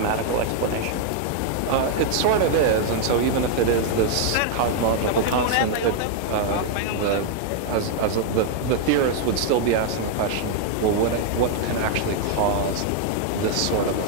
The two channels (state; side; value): different; both; correlation 0.00